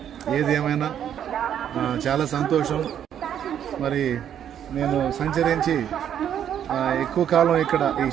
ఏది ఏమైనా చాలా సంతోషం. మరి నేను సంచరించి ఎక్కువ కాలం ఇక్కడ ఈ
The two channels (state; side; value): quieter; left; 9.6 dB